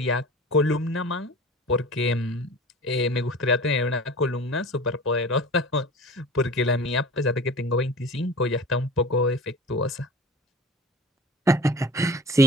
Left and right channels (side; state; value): both; normal; correlation 0.38